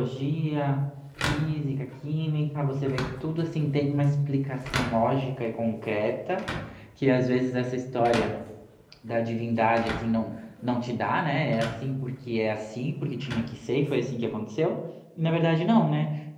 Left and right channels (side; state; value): both; identical; correlation 1.00